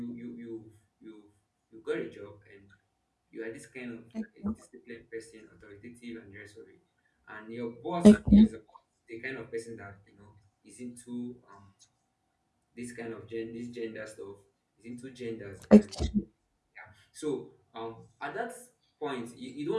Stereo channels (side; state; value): both; identical; correlation 1.00